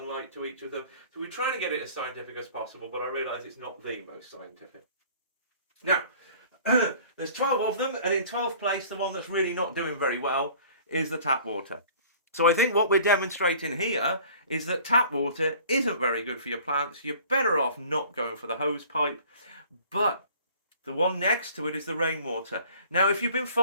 to each of them. So we're trying to get it as scientific as possible, but I realise it's not the most scientific. Now, there's 12 of them, and in 12th place, the one that's really not doing very well is the tap water. So I think what we're demonstrating here is that tap water isn't very good for your plants. You're better off not going for the hose pipe, but the one next to it is the rainwater. Now, if you've been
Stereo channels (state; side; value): inverted; both; correlation -0.49